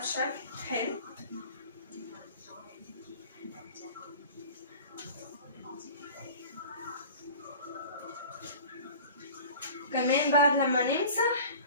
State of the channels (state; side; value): inverted; both; correlation -0.42